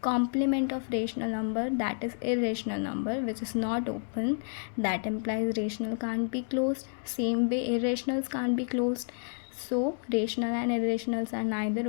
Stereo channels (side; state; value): right; silent; 58 dB below the other